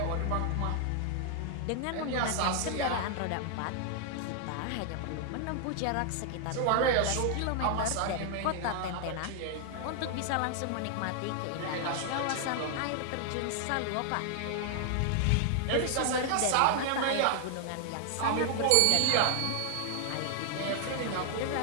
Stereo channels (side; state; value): both; different; correlation 0.00